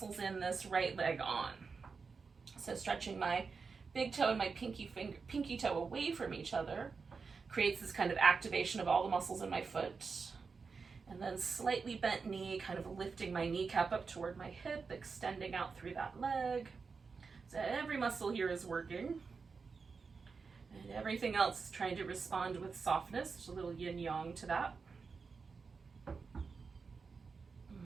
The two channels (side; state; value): left; quieter; 5.0 dB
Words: in this right leg on. So stretching my big toe and my pinky toe away from each other creates this kind of activation of all the muscles in my foot. And then slightly bent knee, kind of lifting my kneecap up toward my hip, extending out through that leg. So every muscle here is working. And everything else is trying to respond with softness. There's a little yin-yang to that.